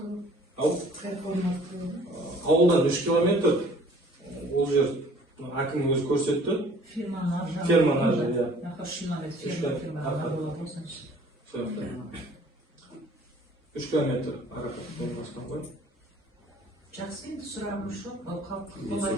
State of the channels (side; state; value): both; normal; correlation 0.53